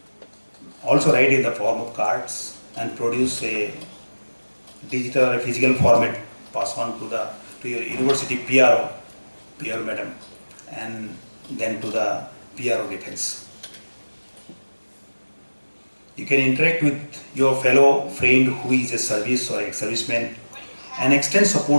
also write in the form of cards and produce a digital or physical format, pass on to your university PRO madam, and then to the PRO defense. You can interact with your fellow friend who is a service or ex-serviceman and extend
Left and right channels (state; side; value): inverted; both; correlation -1.00